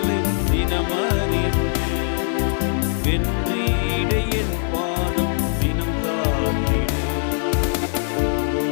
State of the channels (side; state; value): right; silent; digital silence